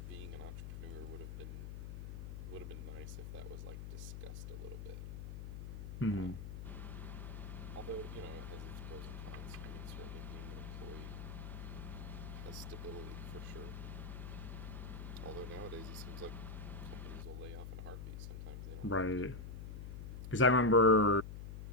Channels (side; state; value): left; noise; hum, 7 dB below the sound